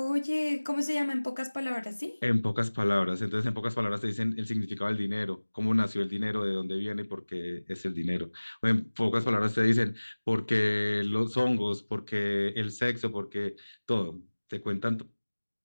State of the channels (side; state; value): both; inverted; correlation -1.00